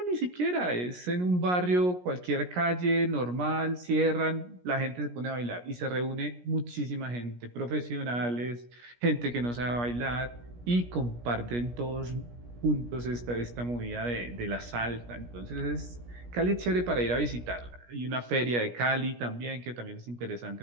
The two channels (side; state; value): left; late; 17 ms